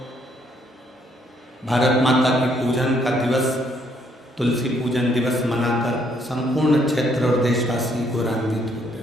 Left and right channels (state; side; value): normal; both; correlation 0.69